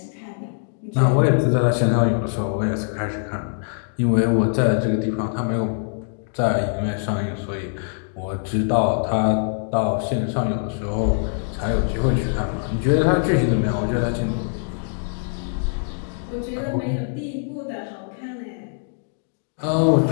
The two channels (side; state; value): right; silent; digital silence